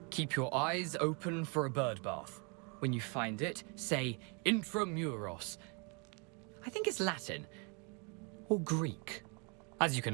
Keep your eyes open for a bird bath. When you find it, say Intramuros. I think it's Latin. Or Greek. As you can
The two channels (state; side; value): quieter; left; 33.9 dB